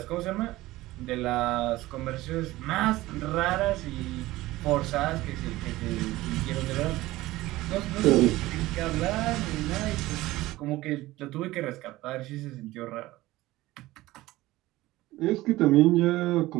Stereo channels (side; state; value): left; quieter; 17.8 dB